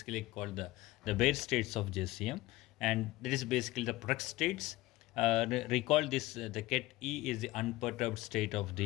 called the bare states of JCM, and that is basically the product states. Recall this: the ket E is the unperturbed state of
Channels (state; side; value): quieter; right; 18.5 dB